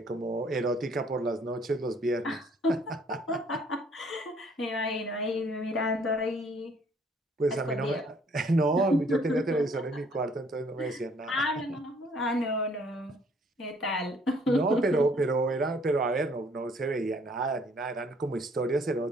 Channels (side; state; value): both; normal; correlation 0.62